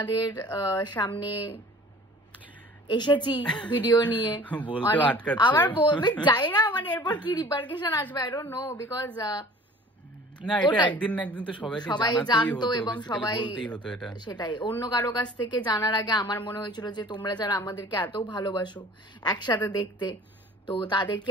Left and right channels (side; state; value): both; normal; correlation 0.47